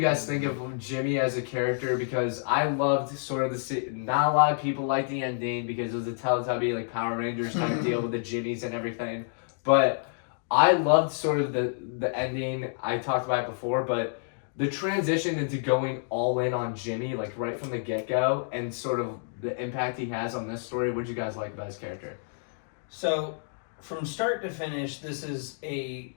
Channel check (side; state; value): right; silent; digital silence